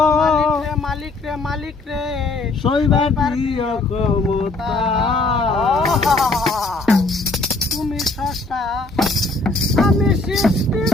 মালিক রে মালিক রে সইবার দিও ক্ষমতা। তুমি স্রষ্টা, আমি সৃষ্টি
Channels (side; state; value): right; quieter; 3.3 dB